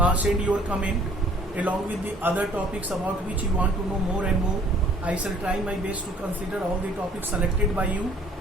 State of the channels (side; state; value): both; normal; correlation 0.56